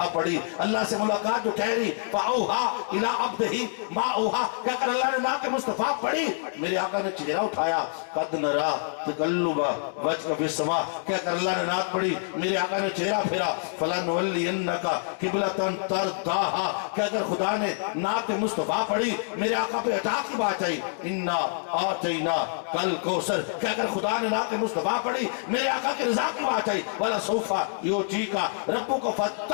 پڑھی۔ اللہ سے ملاقات جو ٹھہری، فاوحیٰ الی عبدہ ما اوحیٰ کہہ کر اللہ نے نعت مصطفیٰ پڑھی۔ میرے آقا نے چہرہ اٹھایا، قد نرا تقلب وجهک فی السماء کہہ کر اللہ نے نعت پڑھی۔ میرے آقا نے چہرہ پھیرا، فلنولینک قبلۃ ترضاھا کہہ کر خدا نے نعت مصطفیٰ پڑھی۔ میرے آقا پہ عطا کی بات آئی، انا اعطیناک الکوثر کہہ کر خدا نے نعت مصطفیٰ پڑھی۔ میرے آقا کی رضا کی بات آئی، ولسوف یعطیک ربک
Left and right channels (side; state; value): right; silent; digital silence